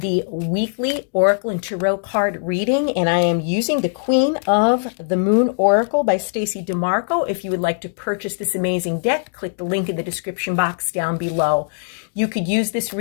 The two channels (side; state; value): right; silent; digital silence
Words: weekly Oracle and Tarot card reading, and I am using the Queen of the Moon Oracle by Stacey DeMarco. If you would like to purchase this amazing deck, click the link in the description box down below. You could use this